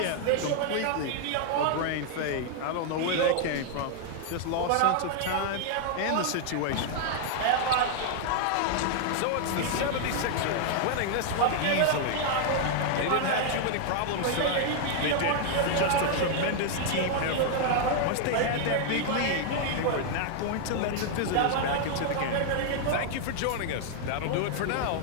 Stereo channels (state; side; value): different; both; correlation 0.00